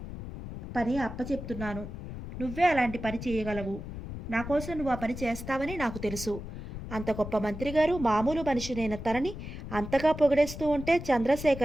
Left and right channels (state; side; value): noise; left; rumble, 9 dB below the sound